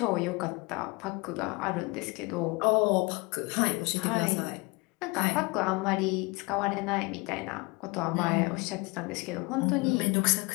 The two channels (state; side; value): quieter; right; 26.6 dB